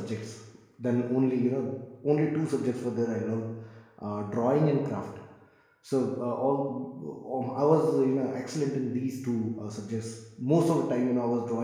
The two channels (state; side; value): identical; both; correlation 1.00